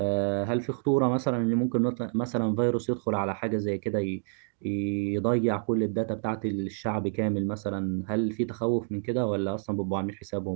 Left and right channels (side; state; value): left; silent; 59 dB below the other